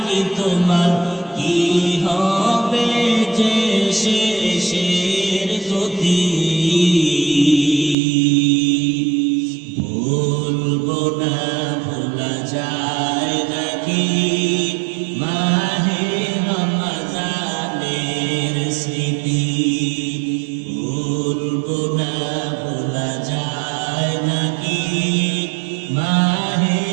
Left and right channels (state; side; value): drops out; left; at 8.0 s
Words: কি তোমার, কি হবে যে শেষের গতি। ভুলবো না, ভোলা যায় নাকি মাহে রমজানের স্মৃতি। ভুলবো না, ভোলা যায় নাকি মা